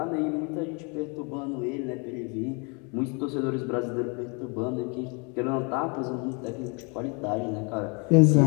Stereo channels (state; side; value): quieter; right; 33.4 dB